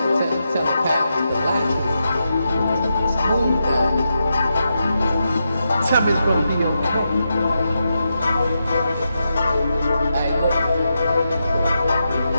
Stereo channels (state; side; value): inverted; both; correlation -0.86